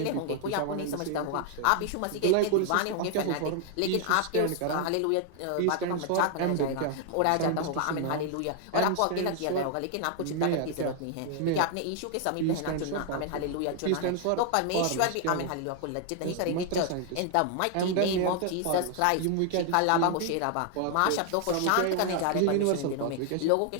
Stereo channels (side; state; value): both; different; correlation 0.00